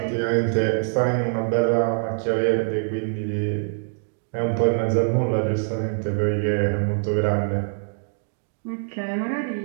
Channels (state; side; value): silent; left; digital silence